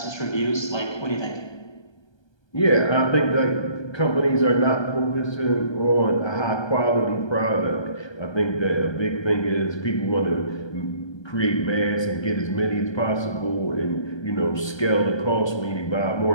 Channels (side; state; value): right; late; 1.3 ms